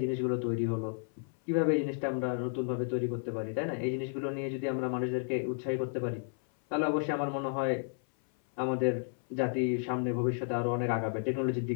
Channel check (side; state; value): right; silent; 56 dB below the other